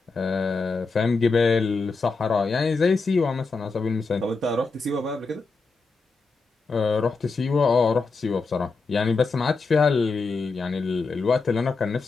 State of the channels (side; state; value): right; quieter; 4.1 dB